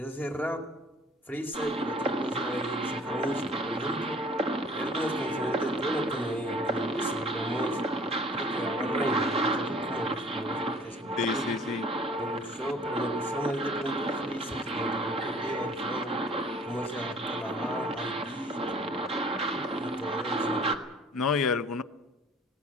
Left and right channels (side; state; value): both; normal; correlation 0.51